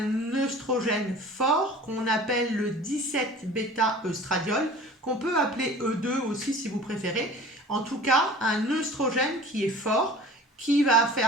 œstrogène fort qu'on appelle le 17-bêta-œstradiol, qu'on peut appeler E2 aussi si vous préférez. En tout cas, un œstrogène qui est fort, qui va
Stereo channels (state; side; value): normal; both; correlation 0.43